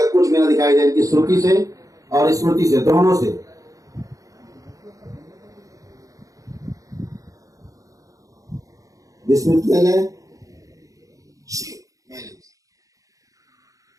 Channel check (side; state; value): left; late; 0.16 ms